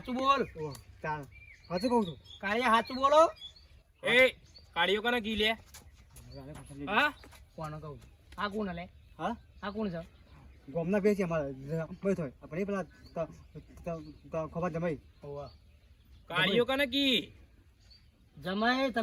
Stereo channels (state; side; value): identical; both; correlation 1.00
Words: બોલ. ચાલ સાચું કહું છું કાળિયા સાચું બોલો. એ કાળીઓ કને કી લે? હા કોણ કહું? આ કોણ લે? હા આ કોણ છે? ગોમના બે છે અમારા ભાઈ થોય આપણે પેલા ખબર જમાઈ કાળીઓ કને કી? જમાઈ